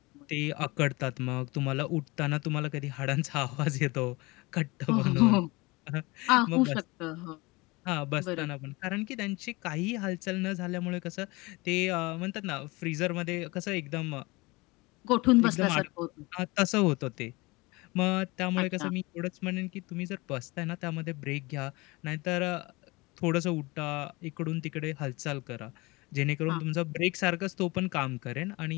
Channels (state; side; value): quieter; right; 23.9 dB